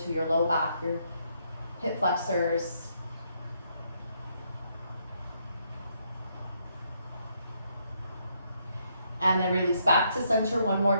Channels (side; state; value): both; inverted; correlation -0.74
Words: to your low back, your hip flexors. And then release back to center one more